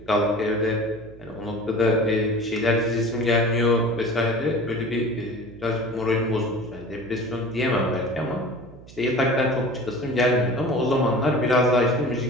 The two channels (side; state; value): right; noise; hum, 20 dB below the sound